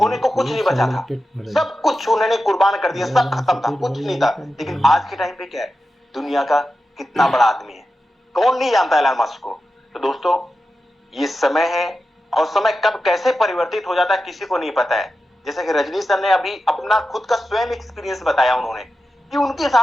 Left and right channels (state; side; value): normal; both; correlation 0.91